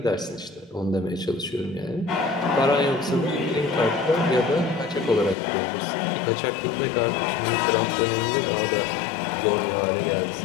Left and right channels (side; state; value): right; drops out; at 5.4 s